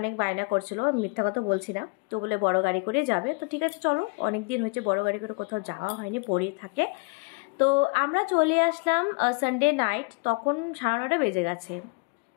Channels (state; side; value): quieter; right; 32.6 dB